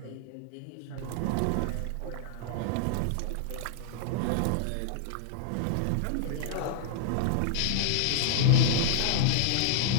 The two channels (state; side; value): different; both; correlation -0.01